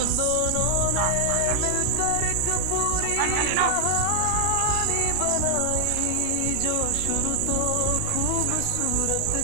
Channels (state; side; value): different; both; correlation 0.00